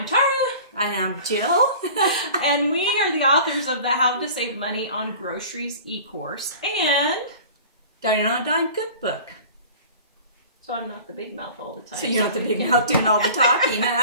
Tara. And I'm Jill. And we are the authors of the How to Save Money on Groceries e-course and Dining on a Dime cookbook. So I'm not the big mouth all the time. So you're not the big mouth doing all the talking.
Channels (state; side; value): inverted; both; correlation -0.42